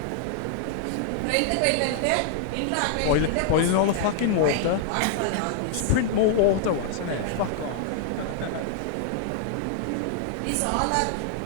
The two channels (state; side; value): different; both; correlation 0.00